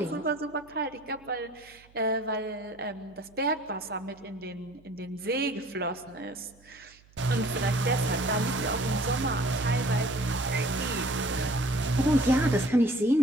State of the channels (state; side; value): noise; right; hum, 28 dB below the sound